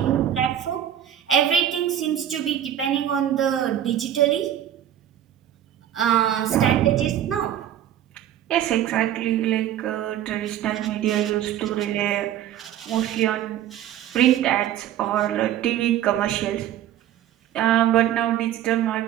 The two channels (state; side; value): quieter; left; 11.2 dB